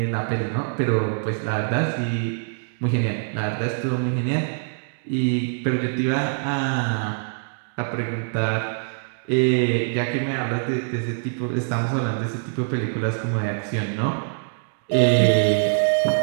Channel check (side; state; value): left; silent; digital silence